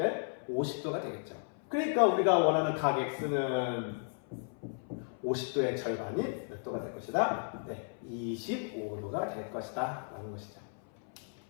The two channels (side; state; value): right; silent; 55 dB below the other